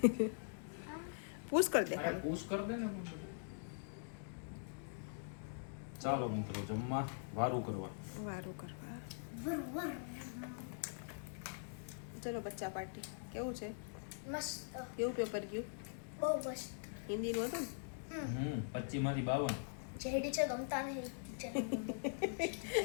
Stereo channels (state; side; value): silent; right; digital silence